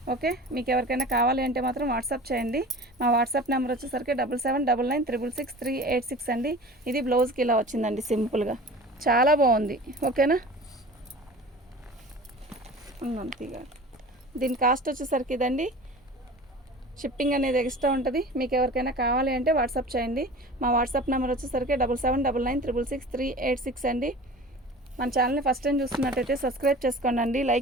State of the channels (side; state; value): both; normal; correlation 0.39